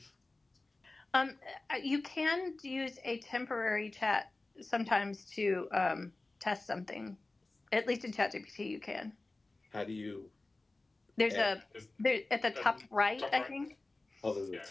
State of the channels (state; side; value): quieter; right; 3.1 dB